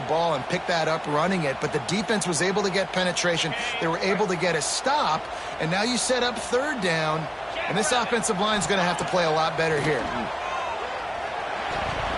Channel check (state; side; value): identical; both; correlation 1.00